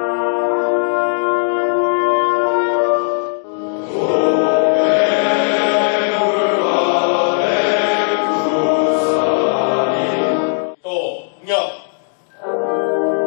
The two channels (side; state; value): right; silent; digital silence